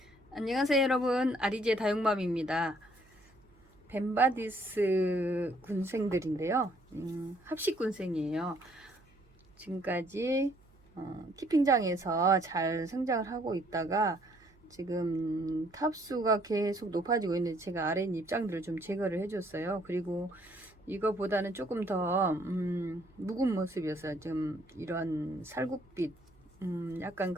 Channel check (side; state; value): right; noise; hum, 30 dB below the sound